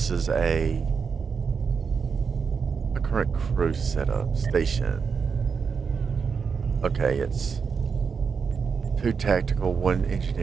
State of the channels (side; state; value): left; quieter; 5.8 dB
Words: is a current crew setup station. Okay, it's 2 tactical, 1